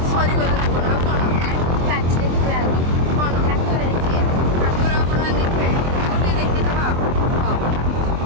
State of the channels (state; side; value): late; left; 23 ms